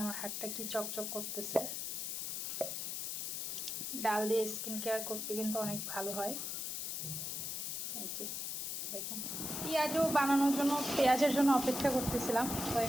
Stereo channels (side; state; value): left; noise; hiss, 3 dB below the sound